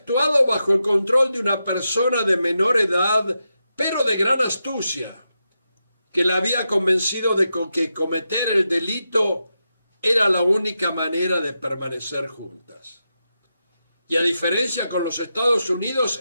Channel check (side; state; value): both; inverted; correlation -0.87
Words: bajo el control de una persona de menor edad, pero de gran astucia, que la había convencido de que cometer el delito era la única manera de permanecer juntas. Y a diferencia con los Estados Unidos,